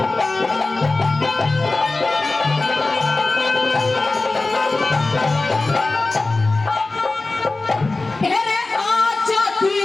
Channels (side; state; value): right; quieter; 3.3 dB